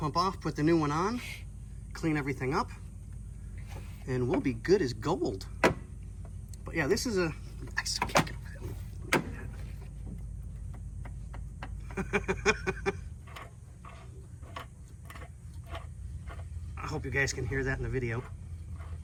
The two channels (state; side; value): identical; both; correlation 1.00